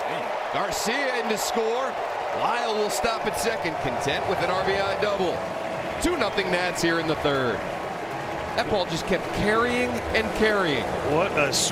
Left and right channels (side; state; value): both; identical; correlation 1.00